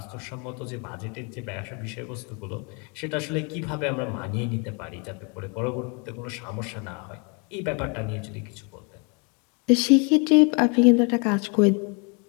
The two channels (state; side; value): quieter; right; 33.8 dB